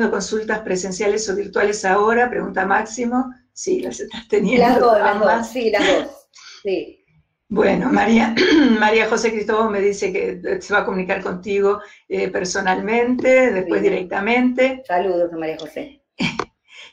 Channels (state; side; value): identical; both; correlation 1.00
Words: consultas presenciales o virtuales ahora, pregunta Máximo. Sí, las estás teniendo. Las dos, sí, las dos, sí. Bueno, María José Cristóbal me dice que se va a comunicar contigo personalmente, después directamente. Saludos a María José.